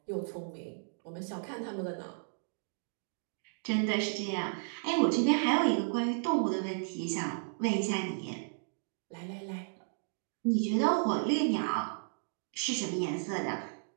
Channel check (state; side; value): silent; left; digital silence